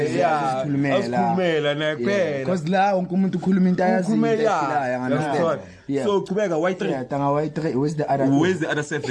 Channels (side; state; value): both; identical; correlation 1.00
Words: Yeah. Asikhulumela naye kuphela. Because la wonke umuntu ukhuluma into ayaziyo. Ukhulumela. Understand? Yeah. So qhubeka Y3. Yeah, tanga Y3 where's the other? Where's the other